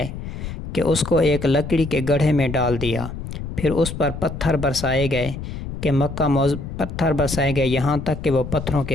کہ اس کو ایک لکڑی کے گڑھے میں ڈال دیا، پھر اس پر پتھر برسائے گئے کہ پتھر برسائے گئے یہاں تک کہ وہ پتھروں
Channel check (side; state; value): left; noise; rumble, 8 dB below the sound